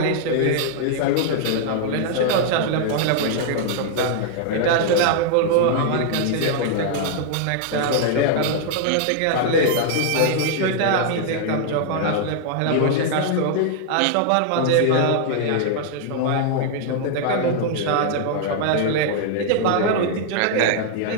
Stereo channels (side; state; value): both; different; correlation 0.00